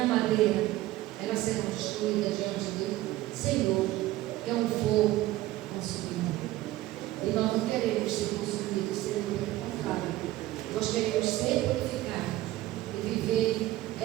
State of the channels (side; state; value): left; quieter; 16.2 dB